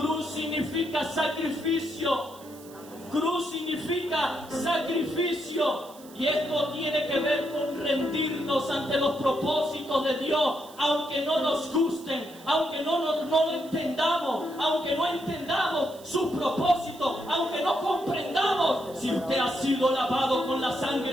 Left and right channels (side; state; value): right; noise; hiss, 22 dB below the sound